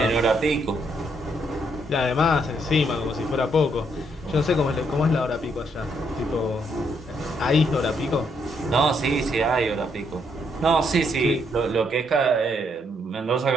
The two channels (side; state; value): both; normal; correlation 0.74